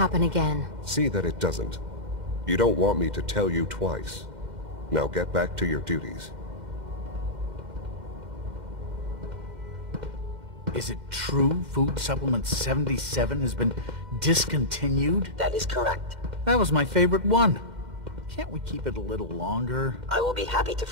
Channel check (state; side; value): late; left; 2.1 ms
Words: again. See that it doesn't. You don't want me to tell you twice. Now get back to your duties. Is it true food supplement 77 has been discontinued? That is correct. That was my favorite one. Can't we keep it a little longer? I will be happy to